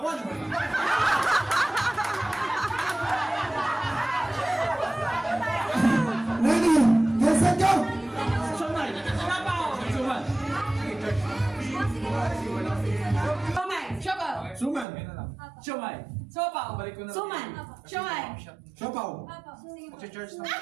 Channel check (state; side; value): drops out; left; at 14.9 s